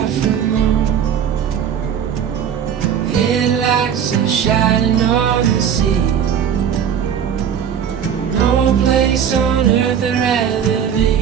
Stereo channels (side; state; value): left; quieter; 8.4 dB